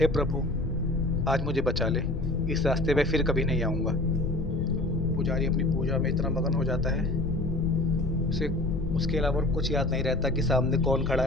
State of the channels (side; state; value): left; noise; rumble, 6 dB below the sound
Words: प्रभु आज मुझे बचा ले, इस रास्ते पे फिर कभी नहीं आऊँगा। पुजारी अपनी पूजा में इतना मगन हो जाता है, उसे उसके अलावा और कुछ याद नहीं रहता कि सामने कौन खड़ा